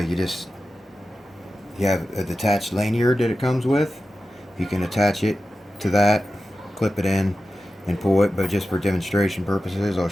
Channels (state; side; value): normal; both; correlation 0.93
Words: have a detached lanyard that it comes with. You can attach it to that, clip it in, and pull it. But just for demonstration purposes, I'll